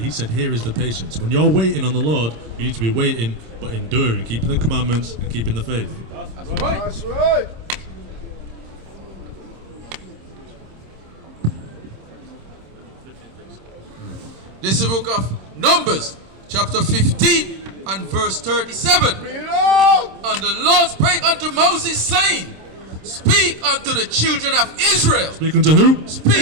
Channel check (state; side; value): late; left; 26 ms